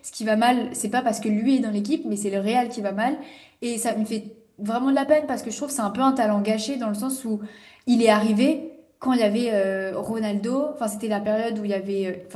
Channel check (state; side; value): identical; both; correlation 1.00